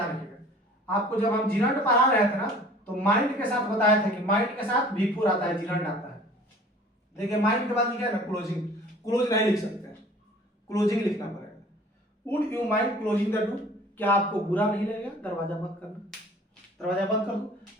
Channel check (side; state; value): both; normal; correlation 0.49